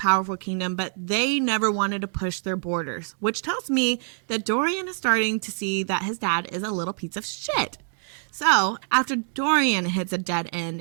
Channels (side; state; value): left; silent; 62 dB below the other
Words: kingdom, but they never wanted to push their borders, which tells me that Dorian is starting to see that his dad is a little piece of shit. So, after Dorian hits a dead end